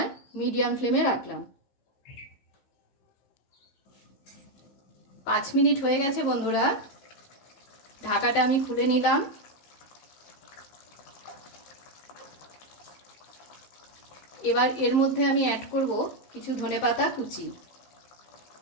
মিডিয়াম ফ্লেমে রাখলাম। 5 মিনিট হয়ে গেছে বন্ধুরা, ঢাকাটা আমি খুলে নিলাম। এবার এর মধ্যে আমি অ্যাড করব কিছু ধনেপাতা কুচি।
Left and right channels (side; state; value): right; late; 15 ms